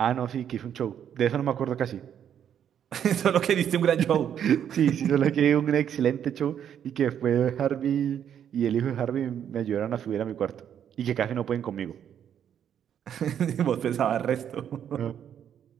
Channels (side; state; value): left; quieter; 9.2 dB